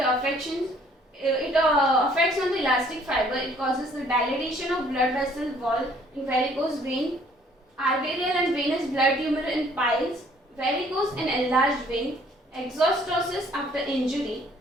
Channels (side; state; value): both; normal; correlation 0.60